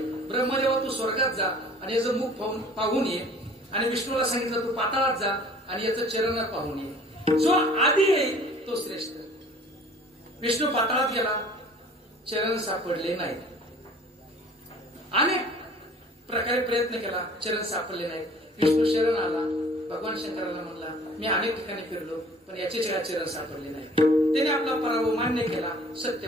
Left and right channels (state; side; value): normal; both; correlation 0.50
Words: ब्रह्मदेवा तू स्वर्गात जा आणि याचं मुख पाहून ये. आणि विष्णूला सांगितलं तू पाताळात जा आणि याचं चरण पाहून ये. जो आधी येईल तो श्रेष्ठ. विष्णू पाताळात गेला, चरण सापडले नाहीत. अनेक प्रकारे प्रयत्न केला, चरण सापडले नाहीत. विष्णू शरण आला. भगवान शंकराला म्हणला मी अनेक ठिकाणी फिरलो पण याचे चरण सापडले नाही. त्याने आपला पराभव मान्य केला,